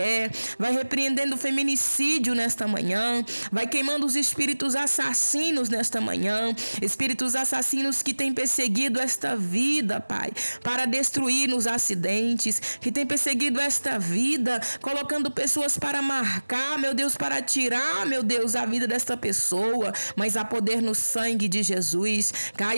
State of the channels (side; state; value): both; inverted; correlation -1.00